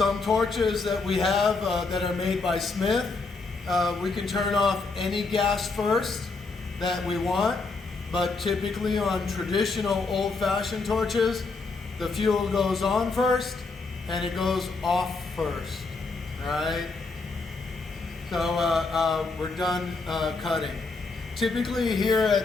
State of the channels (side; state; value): right; quieter; 3.9 dB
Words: torches that we have that are made by Smith, we can turn off any gas first that we want, but typically on traditional old-fashioned torches, the fuel goes on first and it goes off first, right? So we're done cutting. Typically here